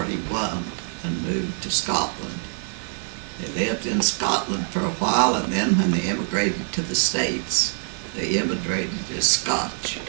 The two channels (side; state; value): left; silent; digital silence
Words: and moved to Scotland. They lived in Scotland for a while, and then when they immigrated to the States, they immigrated as Scotch.